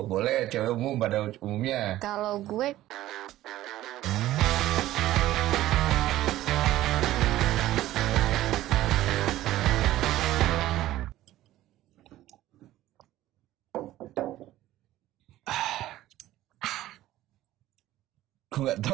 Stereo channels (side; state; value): left; quieter; 14.9 dB